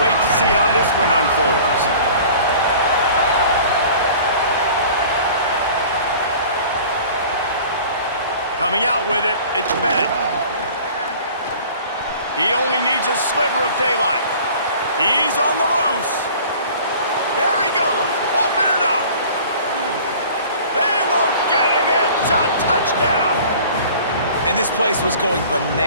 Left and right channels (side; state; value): both; inverted; correlation -0.46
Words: wait to see how this one unfolds. Coming out with it, it's Bennett. He only needs a sliver of daylight. He's on the loose. There he goes. Open it up. They won't get him. It's a touchdown. And this place was going